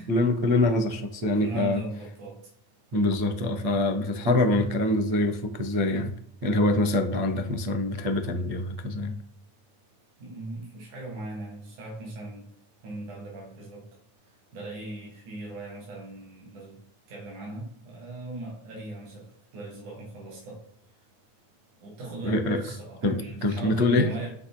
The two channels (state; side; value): late; left; 8.8 ms